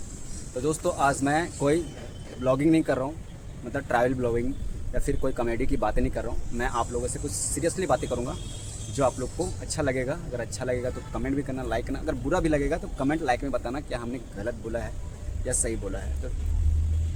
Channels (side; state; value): both; identical; correlation 1.00